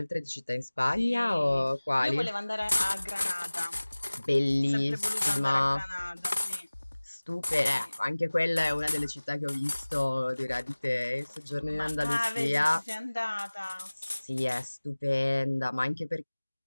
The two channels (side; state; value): both; inverted; correlation -1.00